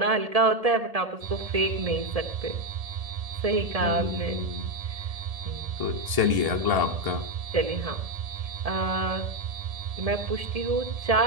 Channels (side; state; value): left; late; 1.7 ms